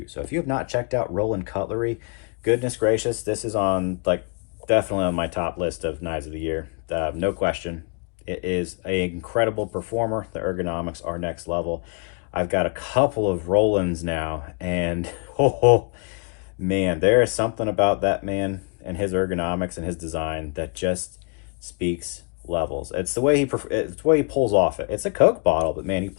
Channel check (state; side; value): quieter; right; 36.3 dB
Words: So if you have not checked out Roland Cutlery, goodness gracious, this is on definitely on my top list of knives of the year. No question. It is an incredible performer. The ergonomics are next level. I've got a couple of Rolands now, and man, there is something about that man and his ergonomics and his design that just speaks levels. It's the way he pulls off it. It's a Coke bottle, but man, he